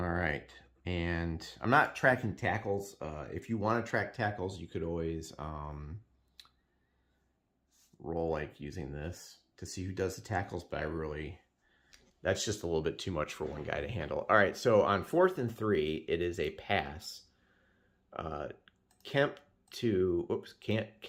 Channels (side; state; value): both; identical; correlation 1.00